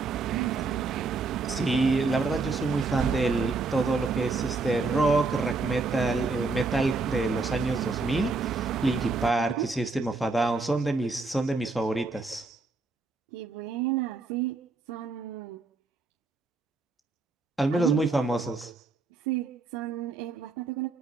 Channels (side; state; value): left; quieter; 3.7 dB